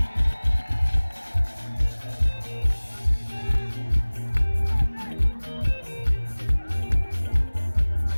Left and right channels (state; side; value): inverted; both; correlation -1.00